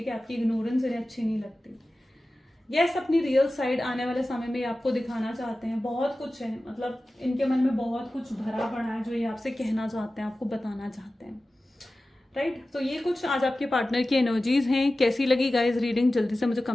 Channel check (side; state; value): both; normal; correlation 0.95